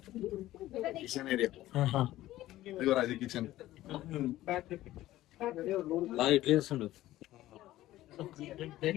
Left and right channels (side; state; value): right; quieter; 15.3 dB